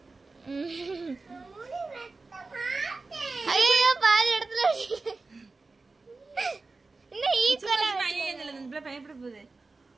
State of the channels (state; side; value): quieter; left; 3.7 dB